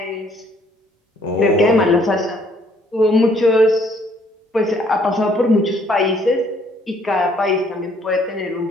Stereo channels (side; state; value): both; normal; correlation 0.64